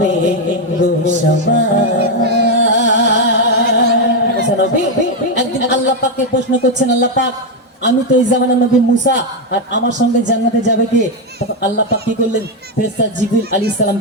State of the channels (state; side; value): normal; both; correlation 0.05